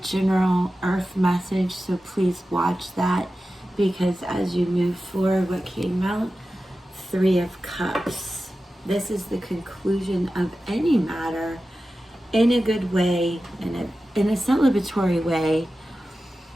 earth message, so please watch that, because as you move forward, what came out? Three of Cups. This is the conclusion of any matter in a good way, in a celebratory way.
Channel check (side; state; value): both; normal; correlation 0.94